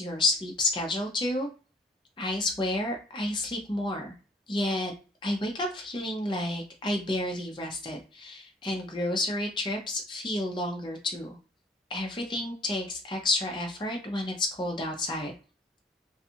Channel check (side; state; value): both; normal; correlation 0.55